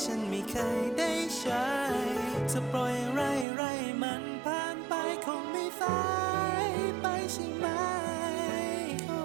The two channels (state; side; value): drops out; left; at 3.5 s